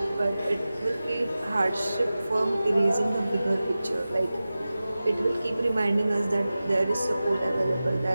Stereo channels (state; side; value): inverted; both; correlation -0.95